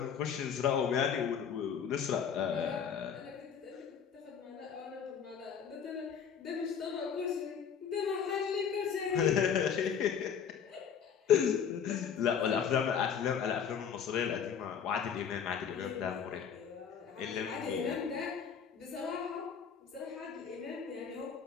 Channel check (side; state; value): right; quieter; 7.4 dB